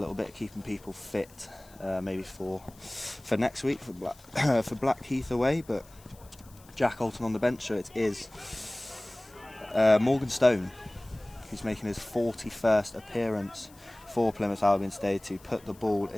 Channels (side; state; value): left; noise; hiss, 25 dB below the sound